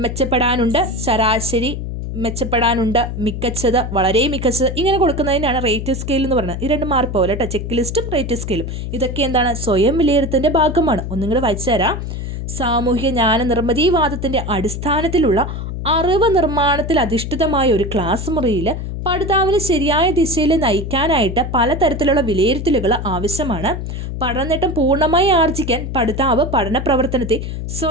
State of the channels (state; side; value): noise; left; hum, 5 dB below the sound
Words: മെച്ചപ്പെടാനുണ്ട്, ശരാശരി മെച്ചപ്പെടാനുണ്ട്, മികച്ചത്, വളരെ മികച്ചത്, ഇങ്ങനെ കൊടുക്കുന്നതിനാണ് റേറ്റിംഗ് സ്കെയിൽ എന്ന് പറയുന്നത്. ഈ രണ്ട് മാറിപ്പോവില്ല കേട്ടോ, ചെക്ക് ലിസ്റ്റും റേറ്റിംഗ് സ്കെയിലും. ഇതൊക്കെ എന്താണ്? സ്വയം വിലയിരുത്തലിൻ്റെ ഭാഗമാണ്. ഒന്നും കൂടെ വായിച്ചു തരാം. സാമൂഹിക ജ്ഞാന നിർമ്മിതിവാദത്തിൻ്റെ അടിസ്ഥാനത്തിലുള്ള അറിവ് നിർമ്മാണത്തിൽ അധിഷ്ഠിതമായ ഒരു ക്ലാസ് മുറിയിൽ പഠിതാവിനെ ശരിയായ ദിശയിൽ നയിക്കാനായിട്ട് പലതരത്തിലുള്ള വിലയിരുത്തലുകൾ ആവശ്യമാണ്. പഠനനേട്ടം പൂർണ്ണമായി ആർജിക്കാൻ പഠിതാവ് പഠന പ്രവർത്തനത്തെ